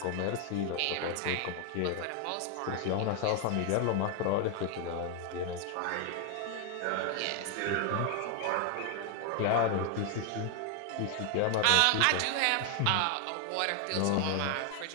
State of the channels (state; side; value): different; both; correlation 0.00